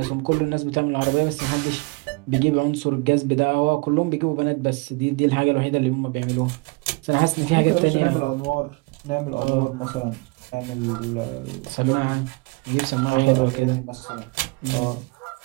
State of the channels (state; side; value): quieter; left; 27.7 dB